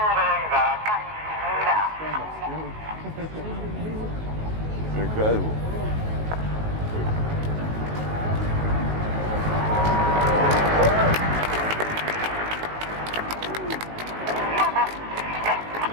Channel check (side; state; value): left; late; 19 ms